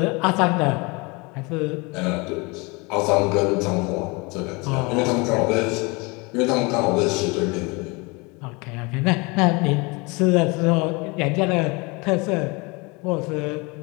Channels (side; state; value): right; quieter; 27.5 dB